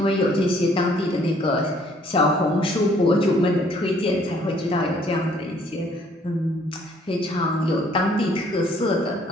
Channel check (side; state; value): both; normal; correlation 0.62